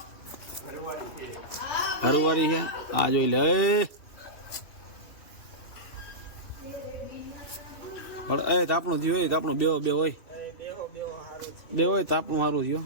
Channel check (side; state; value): right; late; 2.7 ms